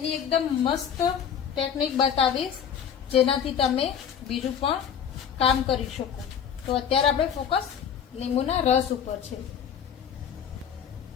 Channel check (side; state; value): right; quieter; 8.1 dB